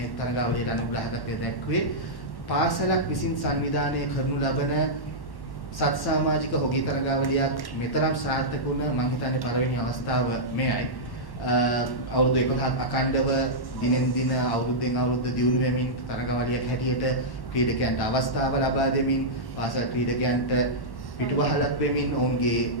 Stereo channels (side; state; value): right; late; 1.1 ms